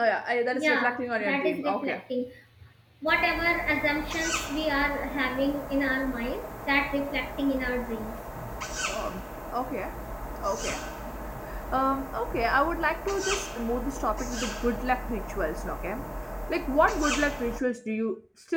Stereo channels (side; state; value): both; identical; correlation 1.00